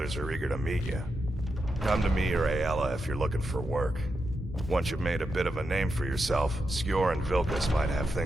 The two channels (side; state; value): both; normal; correlation 0.86